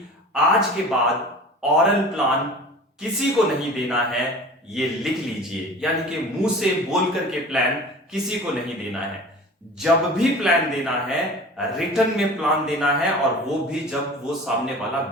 आज के बाद ऑरल प्लान किसी को नहीं देना है, ये लिख लीजिए। यानी कि मुंह से बोल करके प्लान किसी को नहीं देना है। जब भी प्लान देना है, रिटर्न में प्लान देना है और वो भी जब वो सामने वाला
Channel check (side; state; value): both; normal; correlation 0.40